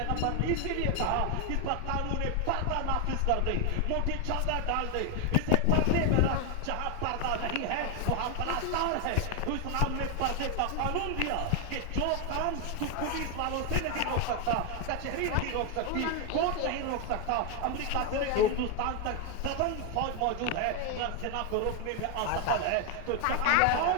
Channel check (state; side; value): different; both; correlation 0.01